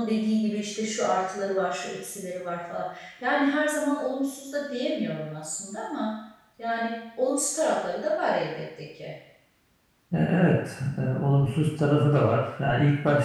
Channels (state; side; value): identical; both; correlation 1.00